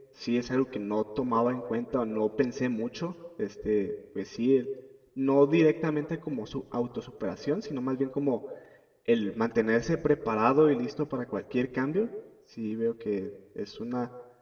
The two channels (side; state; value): both; identical; correlation 1.00